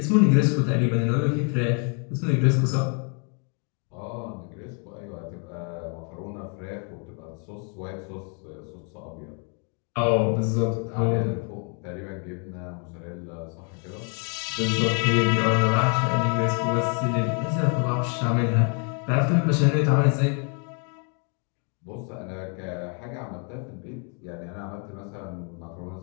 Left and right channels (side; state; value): right; quieter; 39.5 dB